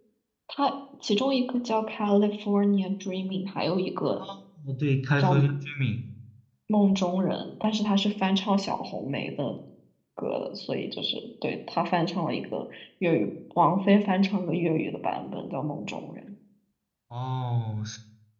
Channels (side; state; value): both; identical; correlation 1.00